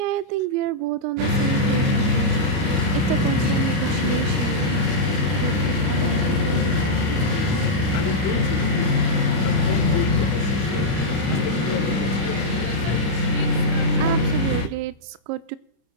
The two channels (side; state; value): left; late; 31 ms